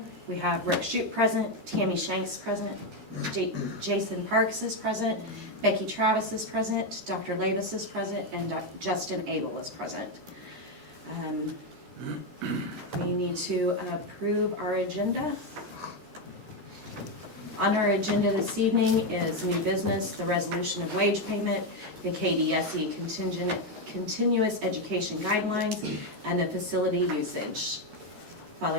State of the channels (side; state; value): left; late; 13 ms